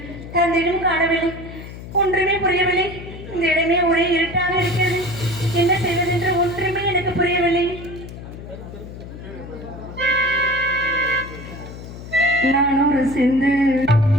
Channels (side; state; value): left; noise; hum, 13 dB below the sound